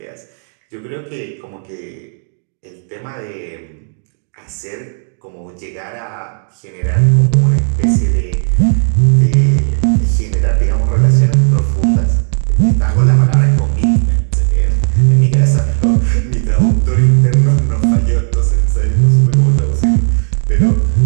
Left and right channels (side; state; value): left; silent; digital silence